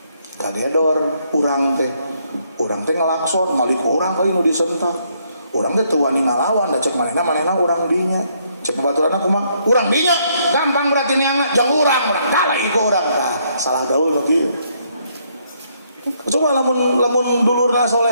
Kagedor urang teh. Urang teh ngelakson, ngalik urang kali nu disentak. Urang teh teu wani ngalawan, da cek manehna urang dinya. Cek babaturanna kumaha? Urang dinya. Gampang berarti niangna jeung urang galai ku urang. Nah, salah gaul nu kieu. Coba lamun dulurna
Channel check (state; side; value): inverted; both; correlation -0.71